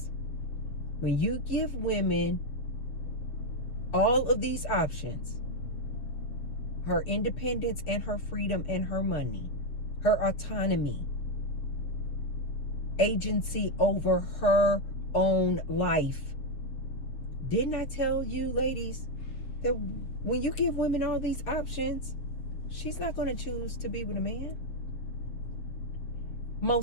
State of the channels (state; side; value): late; right; 7.2 ms